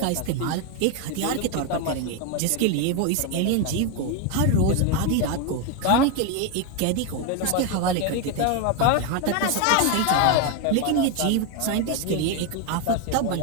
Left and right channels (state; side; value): different; both; correlation 0.01